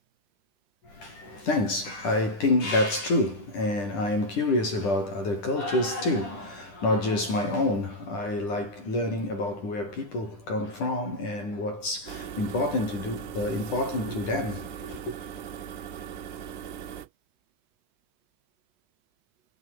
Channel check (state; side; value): late; right; 10 ms